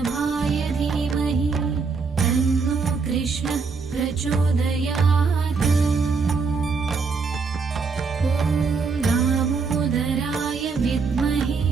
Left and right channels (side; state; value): left; quieter; 4.8 dB